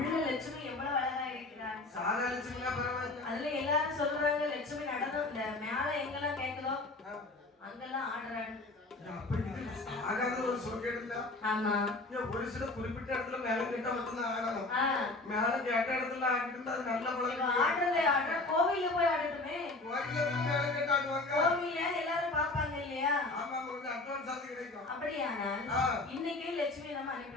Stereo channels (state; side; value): quieter; right; 3.1 dB